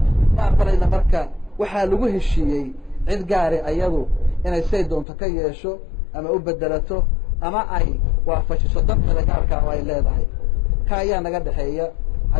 ma aqbalayna marka waxaa lagu heshiiyey cid gaari ayadu inay say doonto ka yeesho ama u bedelato ama ay waafajiso danta gaarka ay leedahay ka ayaa naga dhaxeeya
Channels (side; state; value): right; drops out; at 5.1 s